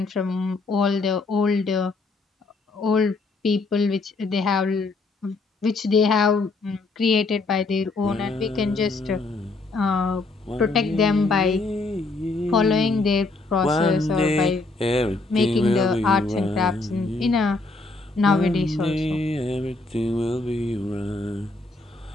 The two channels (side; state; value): right; quieter; 3.5 dB